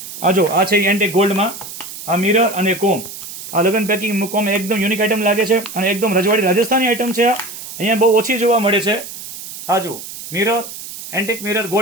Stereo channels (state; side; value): noise; right; hiss, 12 dB below the sound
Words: આ જો આ છે એન્ટિક ગોલ્ડમાં, આ મિરર અને કોમ. આ લગ્ન પેકિંગ મૂકવામાં એકદમ યુનિક આઈટમ લાગે છે, અને એકદમ રજવાડી રાજસ્થાની આઈટમ છે. આ અહીંયા બહુ ઓછી જોવા મળે છે. આ જો મિરર, એન્ટિક મિરર